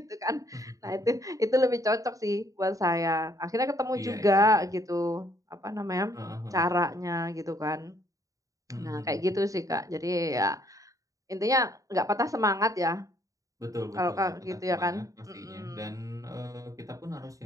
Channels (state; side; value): late; left; 0.16 ms